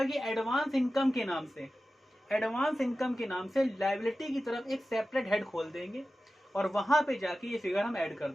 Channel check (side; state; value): both; normal; correlation 0.94